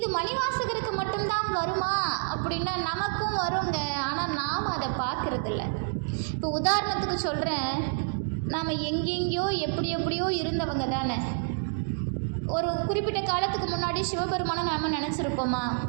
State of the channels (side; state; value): left; silent; digital silence